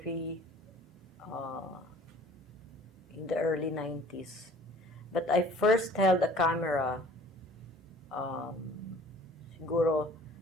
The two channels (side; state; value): both; normal; correlation 0.51